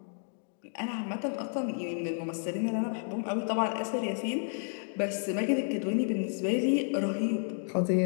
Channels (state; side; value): silent; right; 57 dB below the other